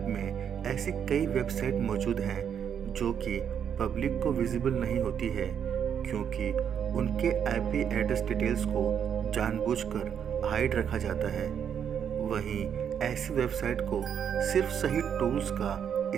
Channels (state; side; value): quieter; left; 8.2 dB